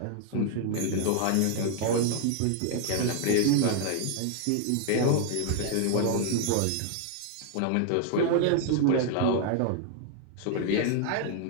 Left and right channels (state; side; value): different; both; correlation 0.00